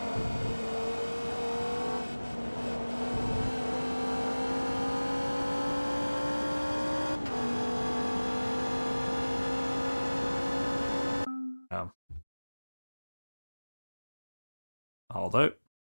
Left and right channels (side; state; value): both; inverted; correlation -1.00